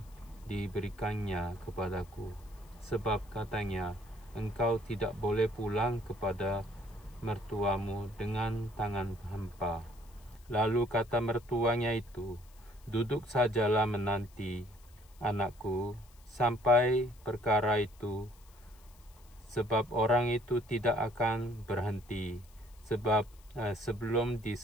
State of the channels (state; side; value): noise; left; hiss, 27 dB below the sound